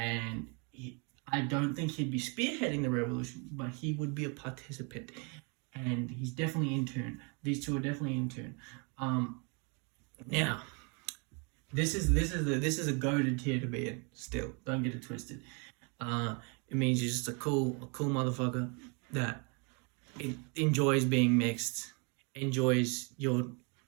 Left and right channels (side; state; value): left; quieter; 33.9 dB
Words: I don't think he'd be spearheading the revolution, but he would be a participant, and he's definitely in tune. These two are definitely in tune. Now, this is a goated tier to be in. Still, don't get it twisted. It means you're just a cool motherfucker that enjoys being mixed, enjoys your